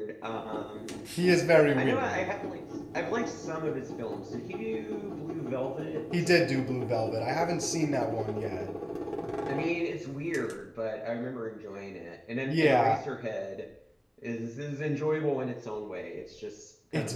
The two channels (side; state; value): both; identical; correlation 1.00